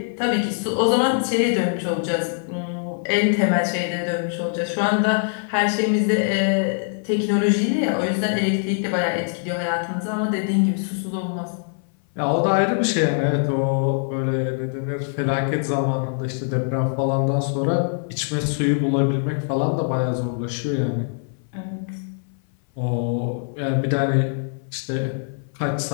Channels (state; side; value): silent; right; 59 dB below the other